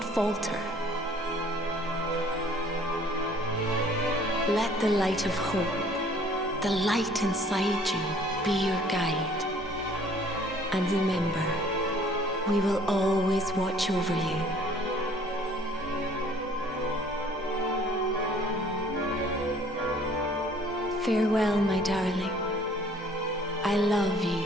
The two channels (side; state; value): both; normal; correlation 0.55